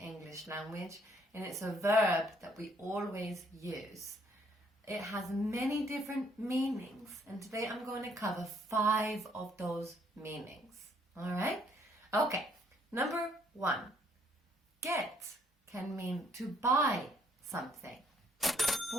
language and it's a verb that we always use. It has many different meanings and today I'm going to cover 5 of those meanings. Alright? Okay, number 1. Get can mean to buy something.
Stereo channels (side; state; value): both; normal; correlation 0.66